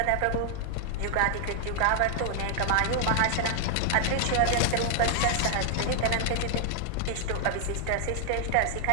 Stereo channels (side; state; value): both; different; correlation 0.00